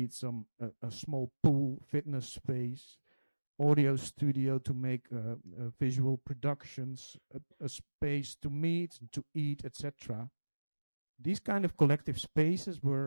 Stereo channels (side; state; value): both; inverted; correlation -1.00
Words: a small pool, fitness space, audio studio to make visual productions, a space to meet and to eat, etc. These kind of collective spaces